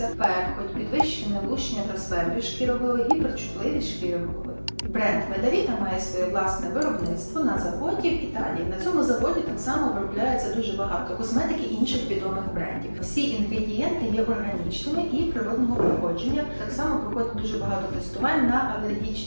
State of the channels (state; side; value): inverted; both; correlation -1.00